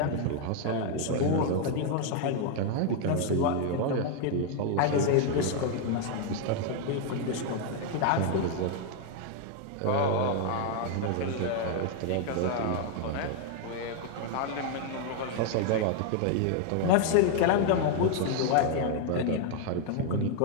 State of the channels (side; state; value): both; different; correlation 0.00